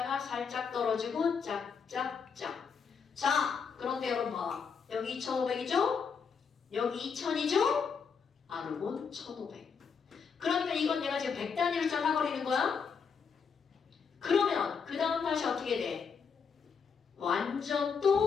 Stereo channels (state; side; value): quieter; right; 6.0 dB